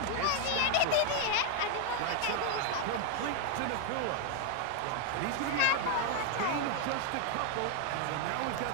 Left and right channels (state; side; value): different; both; correlation 0.01